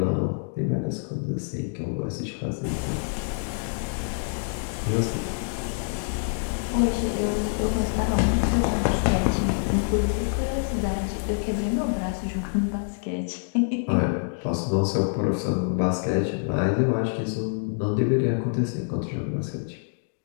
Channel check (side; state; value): right; silent; digital silence